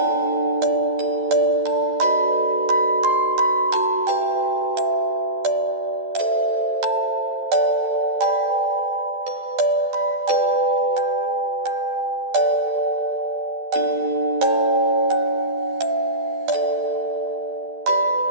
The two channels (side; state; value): left; late; 11 ms